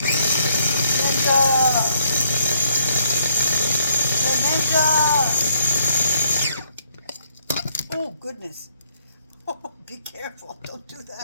Oh, goodness. Oh, be careful. Don't do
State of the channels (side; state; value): both; inverted; correlation -0.70